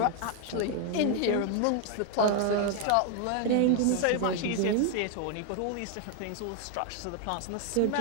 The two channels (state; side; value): different; both; correlation 0.00